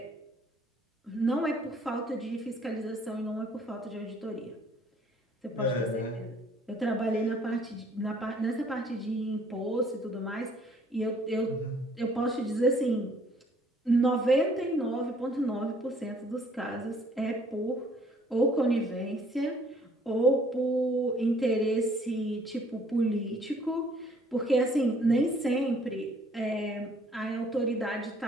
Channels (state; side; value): normal; both; correlation 0.60